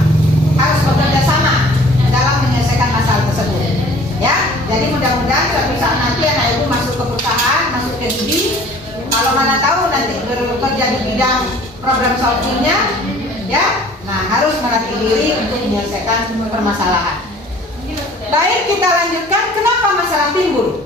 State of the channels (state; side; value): normal; both; correlation 0.51